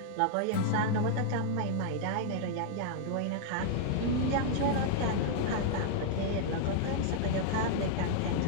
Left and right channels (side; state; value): both; different; correlation -0.01